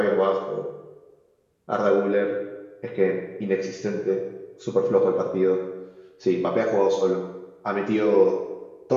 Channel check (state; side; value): identical; both; correlation 1.00